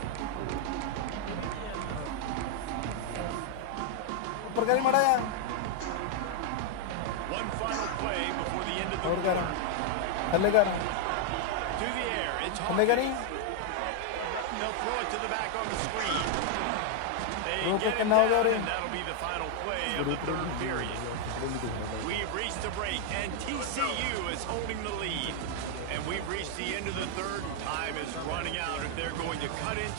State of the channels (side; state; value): both; different; correlation 0.00